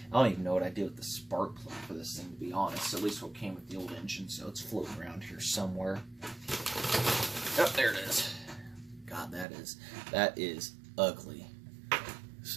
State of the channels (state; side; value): drops out; left; at 9.5 s